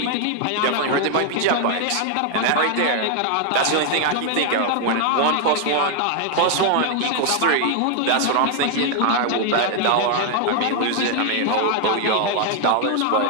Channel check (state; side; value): different; both; correlation 0.00